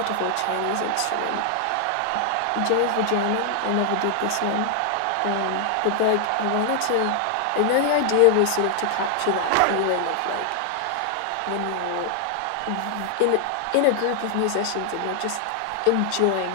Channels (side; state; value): both; different; correlation 0.00